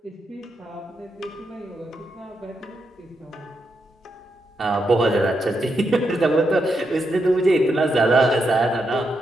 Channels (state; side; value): normal; both; correlation 0.83